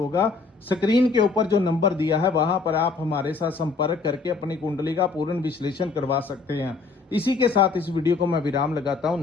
स्क्रीन के ऊपर जो नंबर दिया है वहां पर आप हमारे साथ संपर्क करके अपनी कुंडली का पूर्ण विश्लेषण करवा सकते हैं। इसी के साथ इस वीडियो को मैं विराम लगाता हूं।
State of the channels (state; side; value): quieter; right; 4.3 dB